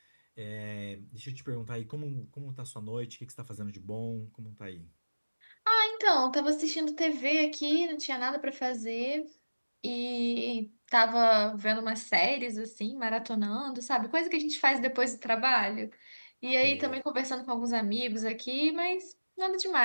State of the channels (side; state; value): both; inverted; correlation -1.00